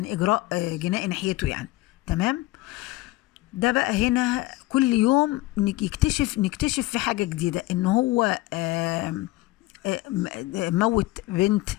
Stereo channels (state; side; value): quieter; right; 18.9 dB